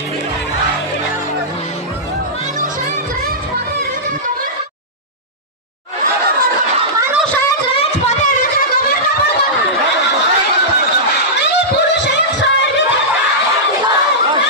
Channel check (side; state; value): both; normal; correlation -0.14